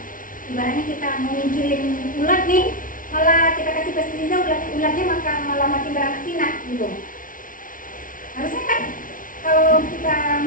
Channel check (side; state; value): right; late; 0.39 ms